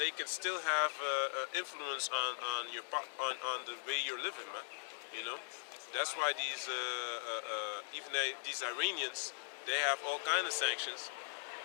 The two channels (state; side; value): silent; right; digital silence